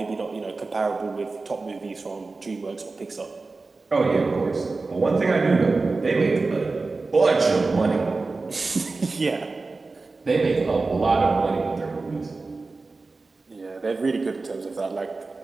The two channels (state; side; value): quieter; left; 3.7 dB